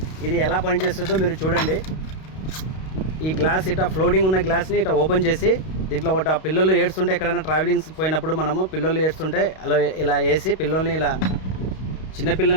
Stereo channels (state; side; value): late; right; 32 ms